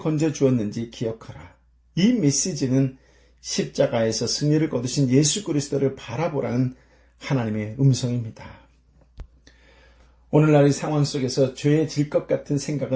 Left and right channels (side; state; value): both; identical; correlation 1.00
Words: 기억하라. 이 메시지는 십자가에서 승리를 거두신 예수 그리스도를 바라보라는 하나님의 음성입니다. 오늘날 이 상황 속에서 죄해질 것 같은